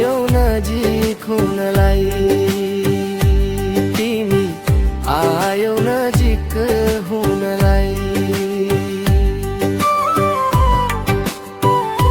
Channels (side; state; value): both; identical; correlation 1.00